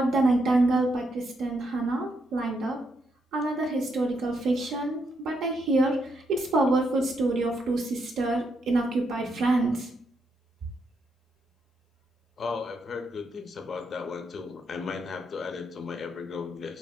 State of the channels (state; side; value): normal; both; correlation 0.79